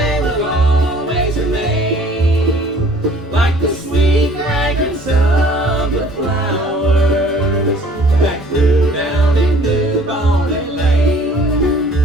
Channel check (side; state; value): both; normal; correlation 0.54